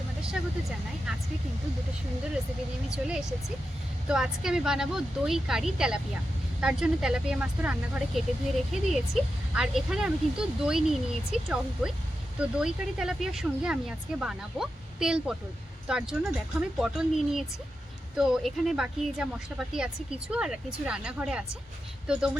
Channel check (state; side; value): normal; both; correlation 0.89